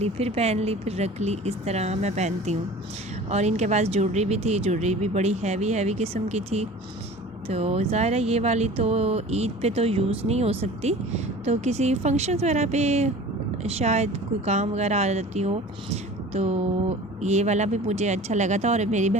फिर पहन ली, फिर रख ली, इस तरह मैं पहनती हूँ। और इनके पास ज्वेलरी भी थी, ज्वेलरी भी बड़ी हैवी किस्म की थी। तो ज़ाहिर है ये वाली तो ईद पे तो यूज़ नहीं हो सकती, तो किसी फंक्शंस वगैरह पे शायद कोई काम वगैरह आ जाती हो। तो ये वाला भी मुझे अच्छा लगा था, और मेरी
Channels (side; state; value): both; normal; correlation 0.41